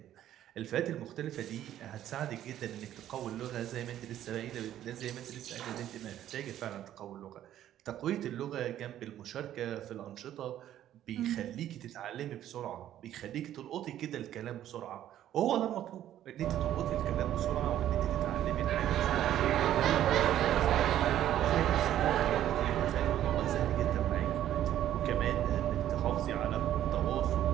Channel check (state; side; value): quieter; left; 11.9 dB